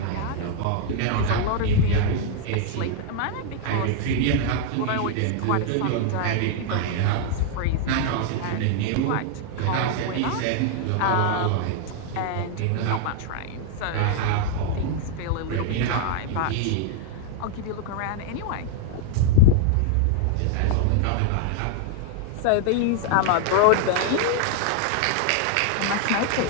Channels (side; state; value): both; different; correlation 0.00